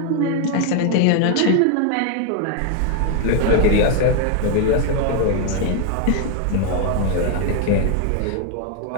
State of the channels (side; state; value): both; different; correlation 0.01